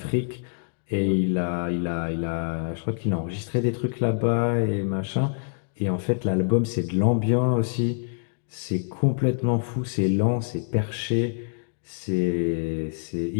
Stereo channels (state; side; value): silent; right; digital silence